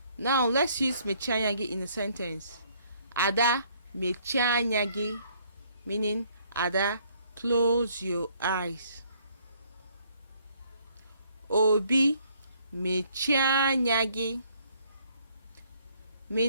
Now let's use mechie anya gị in a sentence. Ada mechie anya gị, meaning Ada close your eyes. Obi mechie anya gị,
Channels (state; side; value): inverted; both; correlation -0.65